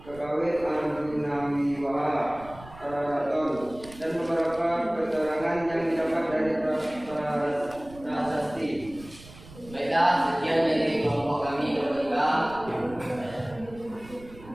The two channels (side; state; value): right; noise; rumble, 19 dB below the sound